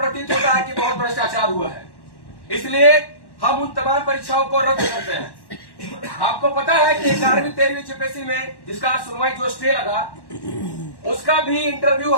होता है कि बहुत भ्रष्टाचार हुआ है, इसलिए हम उन तमाम परीक्षाओं को रद्द करते हैं। आपको पता है कि 11वीं 13वीं जीपीएससी में जिसका सुनवाई जो स्टे लगा, उसका भी इंटरव्यू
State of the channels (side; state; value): right; late; 1.1 ms